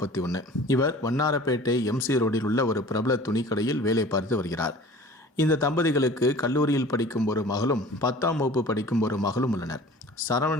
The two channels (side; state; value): both; normal; correlation 0.44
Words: இவர் வண்ணாரப்பேட்டை MC ரோடில் உள்ள ஒரு பிரபல துணிக்கடையில் வேலை பார்த்து வருகிறார். இந்த தம்பதிகளுக்கு கல்லூரியில் படிக்கும் ஒரு மகளும் 10ஆம் வகுப்பு படிக்கும் ஒரு மகளும் உள்ளனர்.